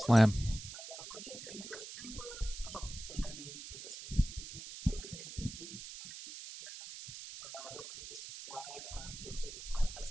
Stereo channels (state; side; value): noise; right; hiss, 11 dB below the sound